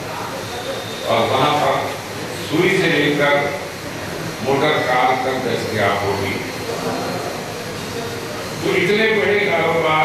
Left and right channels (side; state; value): both; identical; correlation 1.00